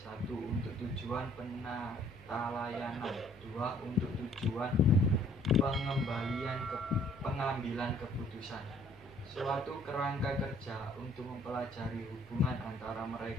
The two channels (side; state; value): right; noise; hum, 22 dB below the sound